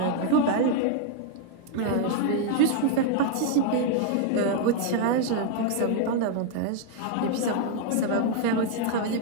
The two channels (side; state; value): both; different; correlation 0.00